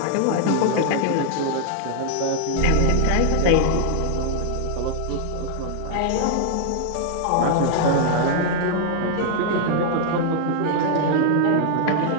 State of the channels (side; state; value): both; different; correlation -0.01